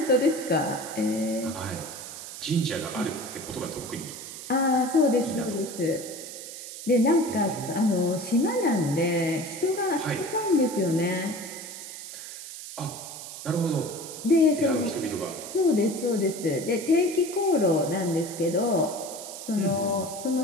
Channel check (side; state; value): right; noise; hiss, 11 dB below the sound